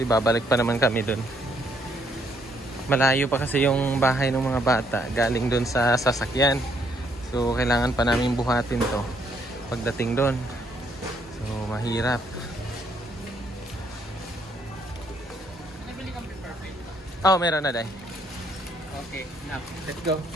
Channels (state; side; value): normal; both; correlation 0.70